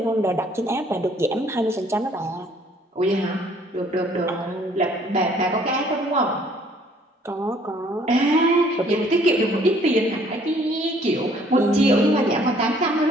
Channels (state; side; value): normal; both; correlation 0.60